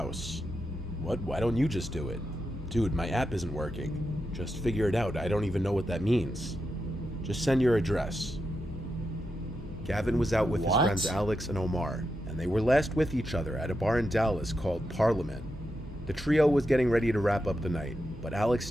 What? Why don't you just do it? Dude, my app isn't working. Just figure it out. I don't even know what that means. Just send your address. Gavin was out with his friends Alex and Omar, and they were last with each other at a bar in Dallas called Parliament. The trio was getting ready to wrap up the night, but Alex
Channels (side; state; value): both; normal; correlation 0.86